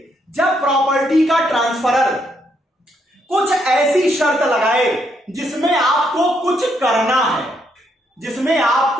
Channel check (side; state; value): both; normal; correlation 0.75